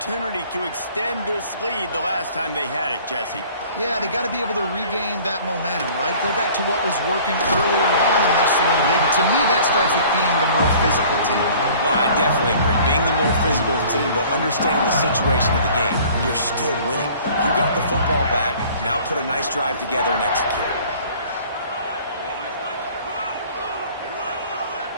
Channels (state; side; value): inverted; both; correlation -0.50